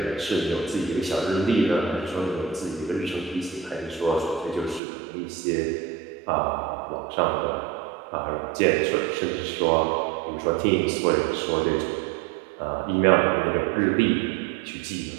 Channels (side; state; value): left; drops out; at 4.8 s